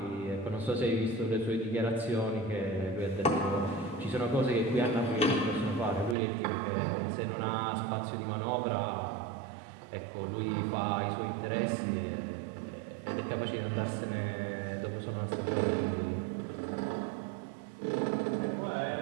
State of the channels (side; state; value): left; drops out; at 6.2 s